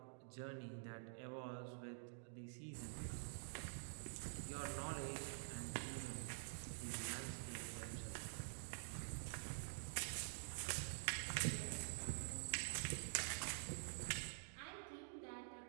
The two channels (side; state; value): left; silent; digital silence